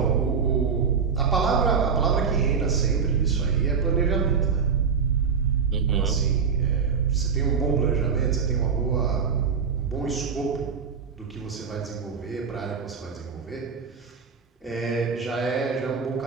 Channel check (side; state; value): left; quieter; 6.0 dB